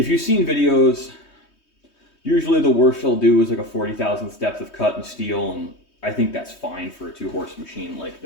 you've seen videos, usually the worst they'll do is like a 40,000th depth of cut in steel, and I think that's fine for a 2-horse machine like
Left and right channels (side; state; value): right; late; 3.2 ms